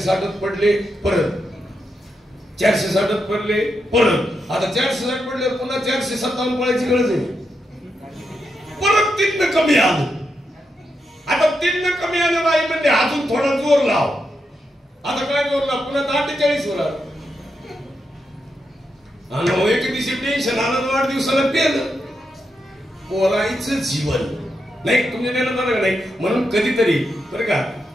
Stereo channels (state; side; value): normal; both; correlation 0.85